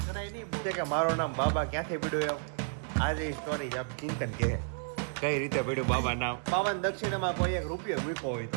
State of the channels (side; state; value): left; silent; 57 dB below the other